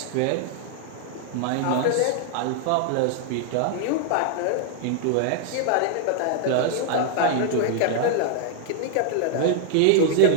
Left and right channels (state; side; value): different; both; correlation 0.00